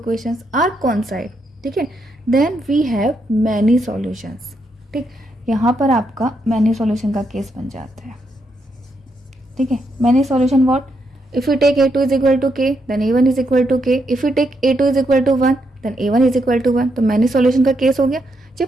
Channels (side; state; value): both; normal; correlation 0.79